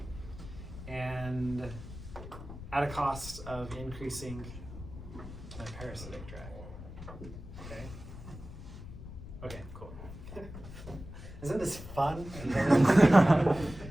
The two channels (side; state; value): left; noise; rumble, 12 dB below the sound